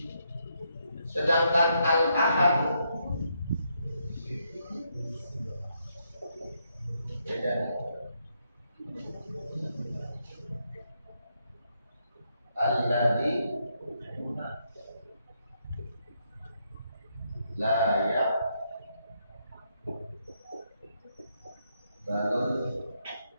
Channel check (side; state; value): both; inverted; correlation -0.78